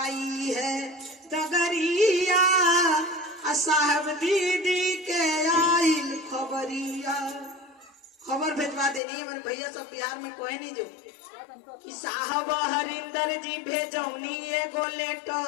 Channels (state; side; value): drops out; right; at 9.0 s